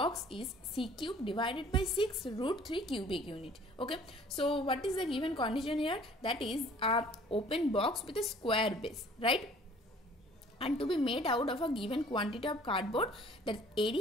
is c cube divided by 6 root 3 cubic unit. Okay. So, what is the given condition here? That is a open box with a square base, right? And to be made out of a given quantity of cardboard, that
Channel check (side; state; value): both; normal; correlation 0.53